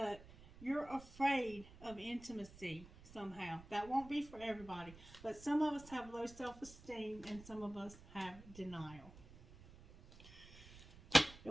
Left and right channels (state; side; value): noise; right; rumble, 19 dB below the sound